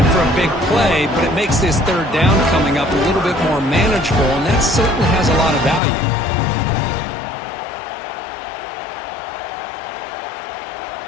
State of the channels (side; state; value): right; drops out; at 5.8 s